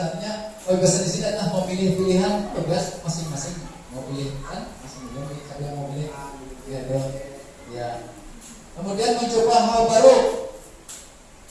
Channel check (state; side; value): identical; both; correlation 1.00